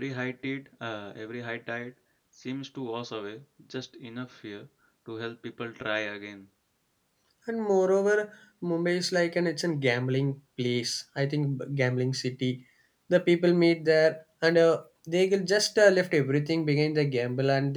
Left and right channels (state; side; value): identical; both; correlation 1.00